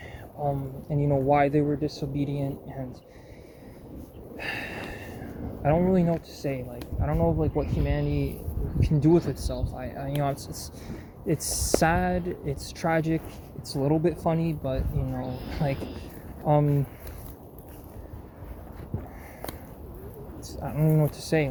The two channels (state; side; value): identical; both; correlation 1.00